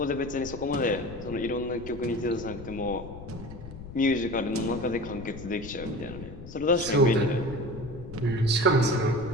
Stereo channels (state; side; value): noise; left; rumble, 13 dB below the sound